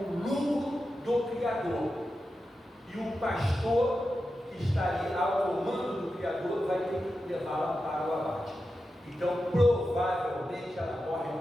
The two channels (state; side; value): normal; both; correlation 0.90